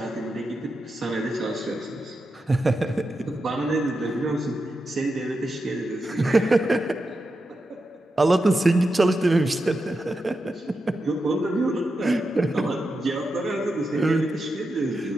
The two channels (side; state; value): both; normal; correlation 0.88